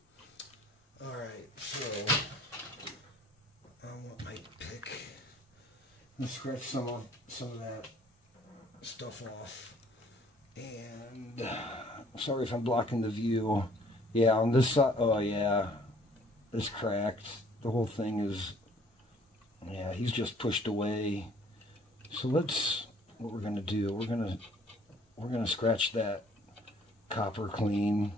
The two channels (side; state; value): both; normal; correlation 0.58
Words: Alright, so I want my pick. Let's scratch some of that stuff off. And sorry if I'm blocking the view. Yeah, on this side, oh yeah, it's cracked. The whole thing is, yeah, he's just pushed away. So let's, what we're gonna do, we're gonna scratch that copper clean